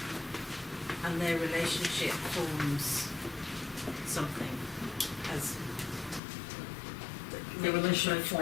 And their relationship forms something as The relationship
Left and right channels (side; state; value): right; drops out; at 6.2 s